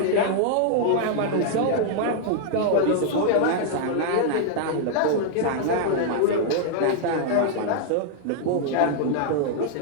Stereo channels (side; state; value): both; different; correlation -0.01